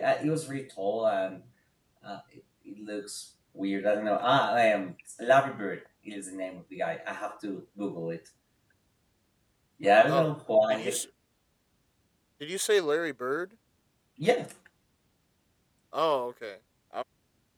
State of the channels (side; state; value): both; identical; correlation 1.00